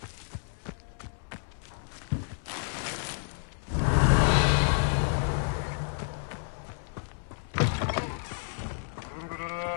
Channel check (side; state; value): right; silent; 58 dB below the other